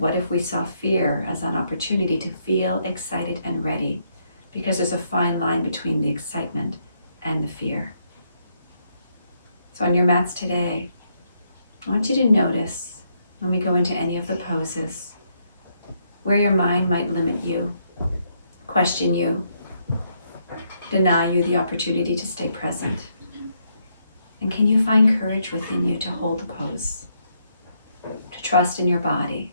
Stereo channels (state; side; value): inverted; both; correlation -0.75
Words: if we saw fear as an opportunity to feel excited and ready? Because there's a fine line between the excitement and the fear. So on your mats today, I want you to notice when we go into any of the poses, where your mind might limit you, question you, deny you the opportunity to stay present. And can you find courage within you to hold the pose? To trust in your body,